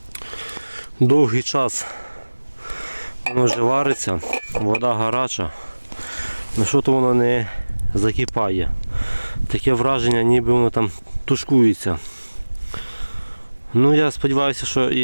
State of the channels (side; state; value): both; inverted; correlation -1.00